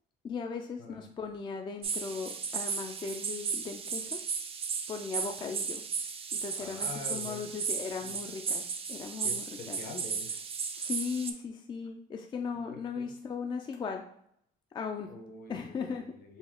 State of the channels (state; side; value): normal; both; correlation 0.24